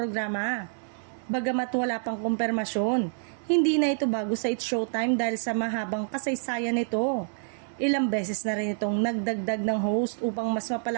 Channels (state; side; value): silent; left; digital silence